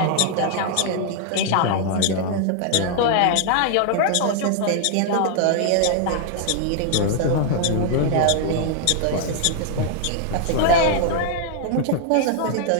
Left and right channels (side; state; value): both; different; correlation 0.00